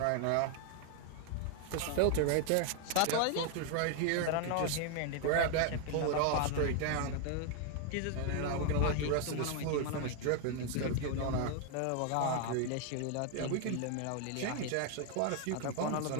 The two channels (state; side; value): different; both; correlation 0.00